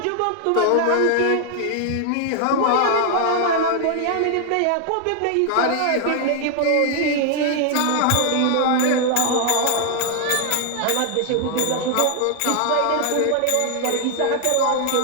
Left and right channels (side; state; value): both; different; correlation 0.00